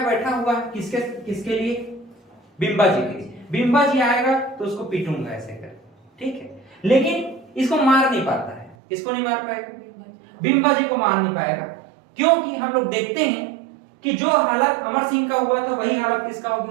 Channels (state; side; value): drops out; left; at 8.8 s